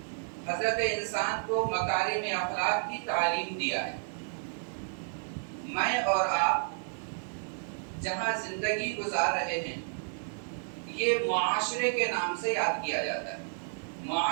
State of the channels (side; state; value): left; silent; digital silence